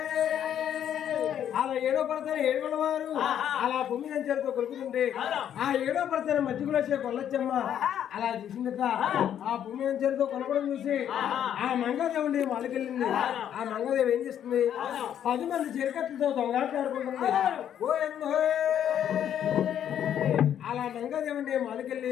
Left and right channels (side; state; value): right; quieter; 9.8 dB